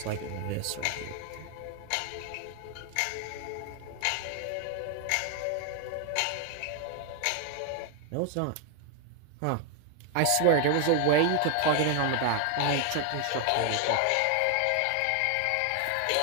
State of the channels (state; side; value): different; both; correlation 0.00